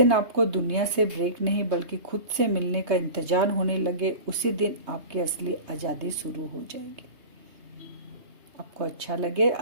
आपको दुनिया से ब्रेक नहीं बल्कि खुद से मिलने का इंतजार होने लगे, उसी दिन आपकी असली आज़ादी शुरू हो जाएगी। आपको अच्छा लगे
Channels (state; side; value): late; left; 3.2 ms